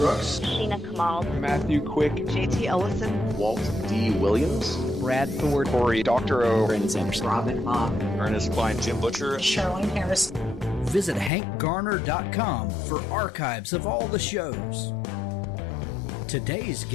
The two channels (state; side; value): drops out; right; at 11.3 s